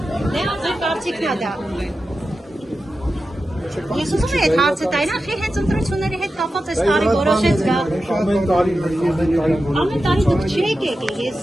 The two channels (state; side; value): normal; both; correlation 0.92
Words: Դե անձեր կարծիքն է դա։ Ես ուզում եմ այդ հարցը տայնա, խի հենց ընտրությունների հետ կապված այս տարի որոշեց գա։ Ամեն տարի Ամեն տարի դուք չեք եկել, ես